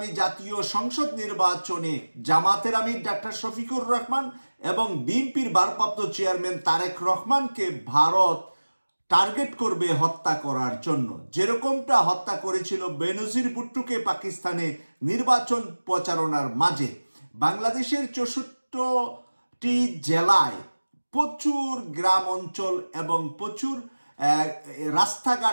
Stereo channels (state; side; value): inverted; both; correlation -1.00